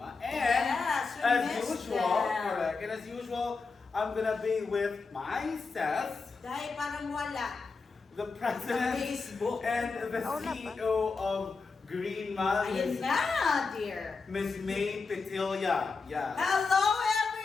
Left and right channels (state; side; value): quieter; right; 4.4 dB